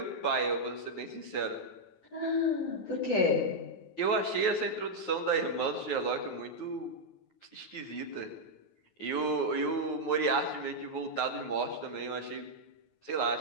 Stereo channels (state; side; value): late; right; 9.4 ms